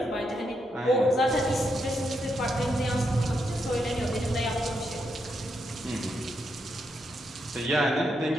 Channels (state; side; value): normal; both; correlation 0.81